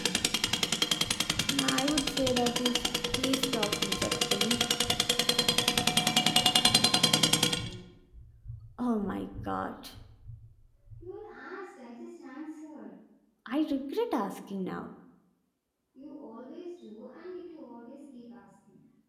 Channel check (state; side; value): identical; both; correlation 1.00